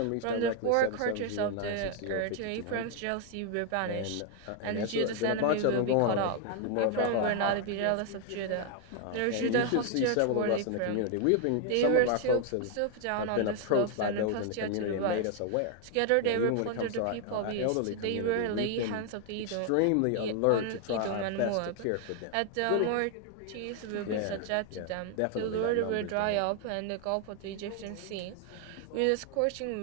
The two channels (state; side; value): different; both; correlation 0.00